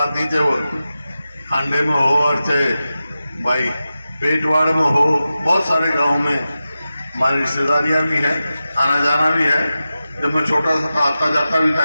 नहीं, चाहे वो खांडे में हो और चाहे भाई पेटवाड़ में हो, बहुत सारे गांव में हमारी रिश्तेदारियां भी हैं, आना जाना भी है। जब मैं छोटा सा था, आता जाता भी था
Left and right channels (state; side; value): inverted; both; correlation -0.93